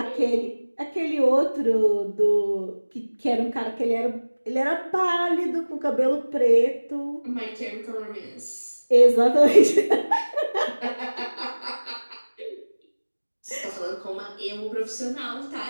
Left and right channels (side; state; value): both; inverted; correlation -1.00